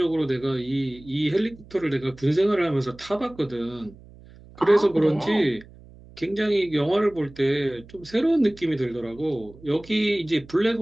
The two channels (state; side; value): noise; right; hum, 22 dB below the sound